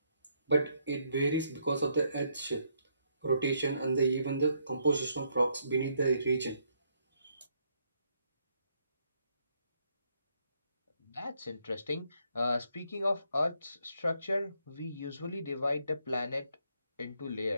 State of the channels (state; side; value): inverted; both; correlation -0.73